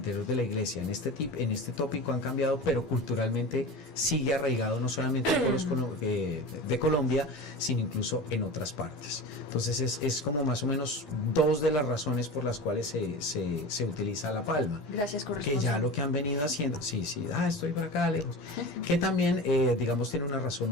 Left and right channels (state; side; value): normal; both; correlation 0.31